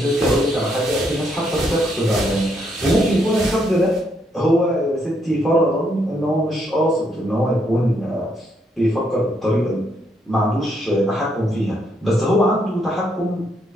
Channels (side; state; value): both; normal; correlation 0.75